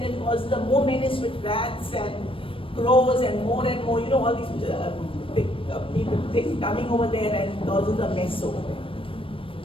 it causes the more menace with rats and crows and more, all these things coming over there and causes a mess over there.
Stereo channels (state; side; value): late; right; 0.26 ms